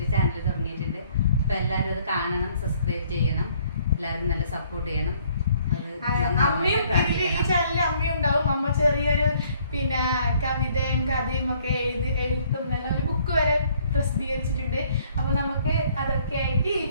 ചാനൽ തുടങ്ങിയിട്ടുണ്ട്. അപ്പൊ എല്ലാവരും അത് കാണണം, സബ്സ്ക്രൈബ് ചെയ്യണം, എല്ലാവരും നല്ല സപ്പോർട്ട് ചെയ്യണം. അമ്മയും ഈ ചാനലിൽ അമ്മയും ഉണ്ടാവും. അമ്മ ചെറിയൊരു പിന്നെ കവിതയും കഥയും ഒക്കെ എഴുത്തും ഒരു ബുക്ക് വരെ പ്രസിദ്ധീകരിച്ചിട്ടുണ്ട്. അപ്പൊ നമുക്ക് അതൊക്കെ ആയിട്ട് ഈ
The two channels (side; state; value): both; inverted; correlation -0.62